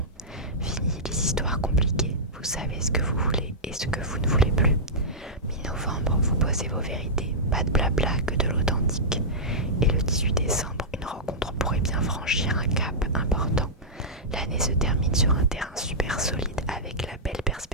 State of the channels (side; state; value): both; normal; correlation -0.13